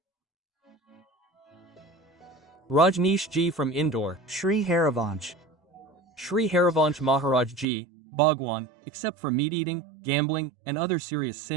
Rajneesh Ji from Indore. Shri Harivansh. Shri Harivansh Maharaj Ji, Bhagwan, except for meat-eating, gambling, and other serious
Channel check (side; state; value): left; drops out; at 7.7 s